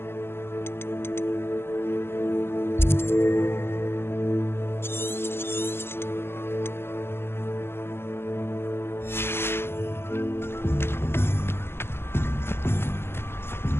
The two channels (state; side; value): late; right; 0.12 ms